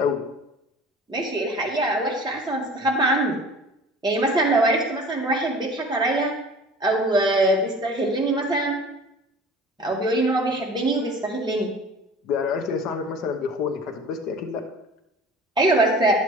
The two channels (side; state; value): both; normal; correlation 0.43